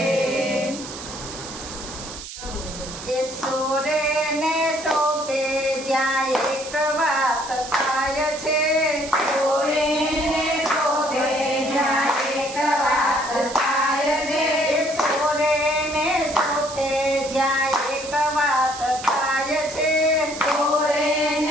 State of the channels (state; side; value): noise; right; hiss, 11 dB below the sound